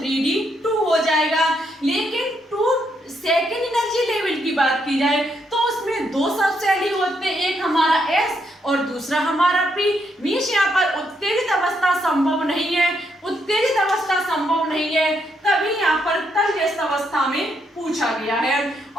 2 हो जाएगा। लेकिन 2 सेकेंड एनर्जी लेवल की बात की जाए तो उसमें दो सब शेल ही होते हैं, एक हमारा S और दूसरा हमारा P। मीन्स यहाँ पर उत्तेजित अवस्था संभव नहीं है, उत्तेजित अवस्था संभव नहीं है, तभी यहाँ पर तलजस्त अवस्था में पूछा गया है।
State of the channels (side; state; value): both; normal; correlation 0.77